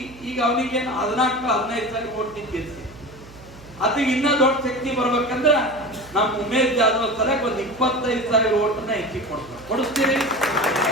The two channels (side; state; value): right; noise; hum, 21 dB below the sound